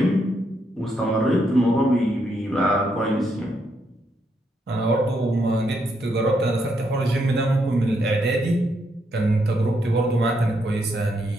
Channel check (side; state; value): both; normal; correlation 0.77